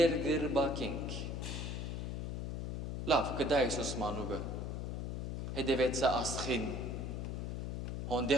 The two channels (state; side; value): noise; left; hum, 3 dB below the sound